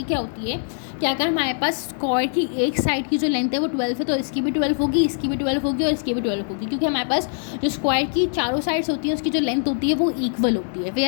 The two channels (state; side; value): silent; right; 64 dB below the other